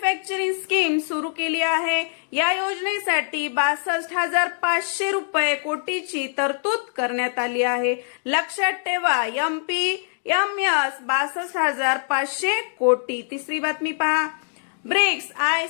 स्कीम सुरू केली आहे. या योजनेसाठी 62,500 रुपये कोटीची तरतूद करण्यात आली आहे. लक्षात ठेवा, MPMS 62,500 कोटी. तिसरी बातमी पहा. ब्रिक्स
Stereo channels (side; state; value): right; silent; digital silence